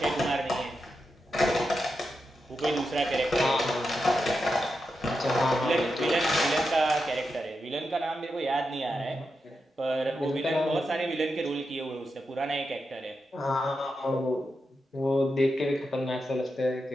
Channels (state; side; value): normal; both; correlation 0.87